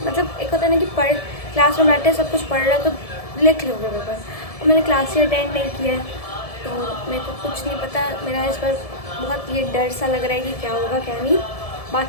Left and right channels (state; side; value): late; right; 1.7 ms